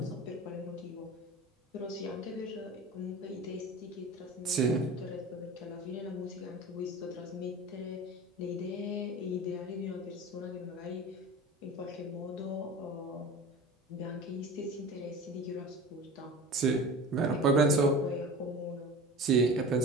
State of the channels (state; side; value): normal; both; correlation 0.35